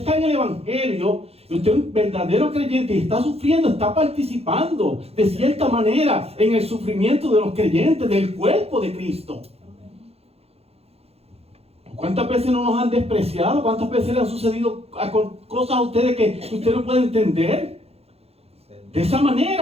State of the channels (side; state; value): left; late; 0.29 ms